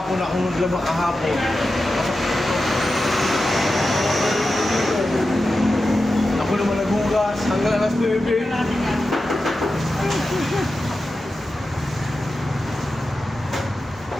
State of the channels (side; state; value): both; normal; correlation 0.92